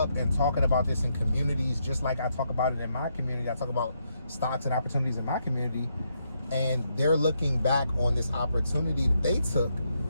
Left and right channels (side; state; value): both; inverted; correlation -0.78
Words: and talking about this in communities, just like I talk about it in my community. I talk about stocks and opportunities in my community, and they're looking back on this opportunity that they took